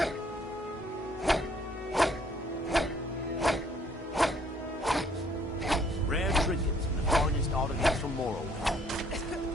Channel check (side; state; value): both; normal; correlation 0.63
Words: Rare trinkets and the finest artifacts from Morrowind.